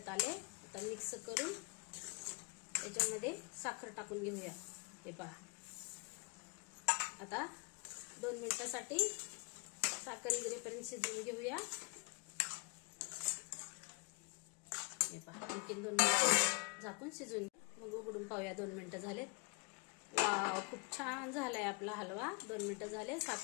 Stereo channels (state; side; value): quieter; right; 34.3 dB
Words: आले. आता मिक्स करून याच्यामध्ये साखर टाकून घेऊया. हे पहा आता 2 मिनिटासाठी साखर इगरेपर्यंत शिजवून घेऊया. हे पहा आणखीन 2 मिनिटं झाकून शिजवून मग उघडून पाहूया. 2 मिनिटं झालेत. वाव खूप छान झालाय आपला हलवा. 2 मिनिटं झाले.